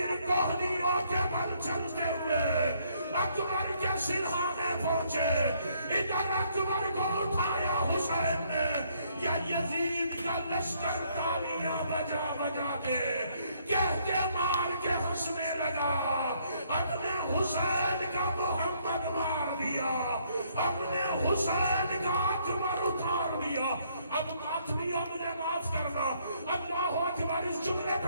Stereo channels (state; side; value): inverted; both; correlation -0.68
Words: کوہنیوں کے بل چلتے ہوئے اکبر کے سرحانے پہنچے، ادھر اکبر کو اٹھایا حسین نے، یا یزید کا لشکر تالیاں بجا بجا کے کہہ کے مار کے ہنسنے لگا۔ اپنے حسین کا محمد مار دیا، اپنے حسین کا اکبر اتار دیا۔ اب ماتمیا مجھے معاف کرنا، اللہ اکبر، اس جملے